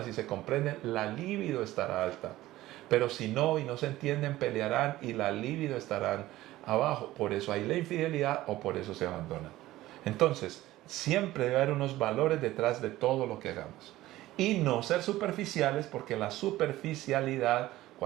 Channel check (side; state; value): left; quieter; 16.2 dB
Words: y se comprenden, la libido estará alta. Pero si no y no se entienden, pelearán y la libido estarán abajo. Por eso hay la infidelidad o por eso se abandonan. Entonces, siempre debe haber unos valores detrás de todo lo que hagamos. Y no ser superficiales, porque la superficialidad,